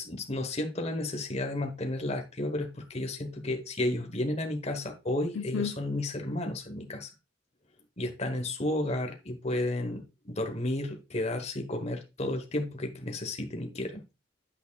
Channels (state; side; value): normal; both; correlation 0.58